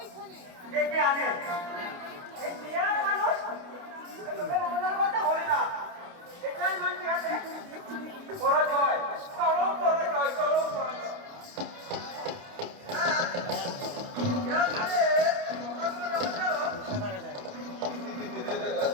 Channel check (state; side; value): late; left; 28 ms